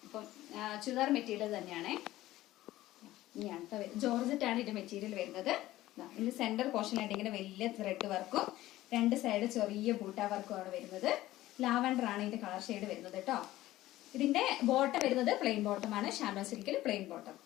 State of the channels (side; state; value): right; quieter; 15.8 dB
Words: അപ്പം ചുരിദാർ മെറ്റീരിയൽ തന്നെയാണ്. ഇനിയാണ് ജോർജറ്റാണ് ഇതിന്റെ മെറ്റീരിയൽ വരുന്നത്. ഇതിന്റെ സെന്റർ പോർഷനായിട്ട് ഇങ്ങനെ വലിയ ത്രെഡ് വർക്കും രണ്ട് സൈഡ് ചെറിയ ബൂട്ട വർക്കും ആണ് വരുന്നത്. ലാവൻഡർ ആണ് ഇതിന്റെ കളർ ഷെയ്ഡ് വരുന്നത് കേട്ടോ. ഇതിന്റെ ബോട്ടം വരുന്നത് പ്ലെയിൻ ബോട്ടം ആണ്. ഷാനോ സിൽക്കിൽ പ്ലെയിൻ ബോട്ടം.